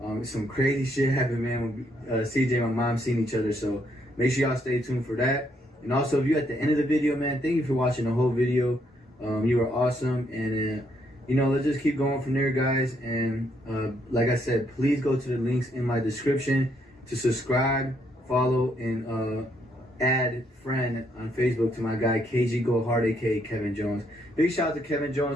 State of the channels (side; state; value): both; normal; correlation 0.73